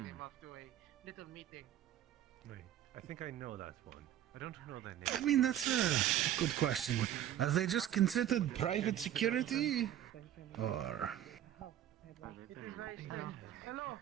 them off to a little meeting. Wait, I think I know that one. I don't know their I name. mean, that's a good question. Are they just considered private security? Or. Hello,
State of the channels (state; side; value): quieter; left; 11.3 dB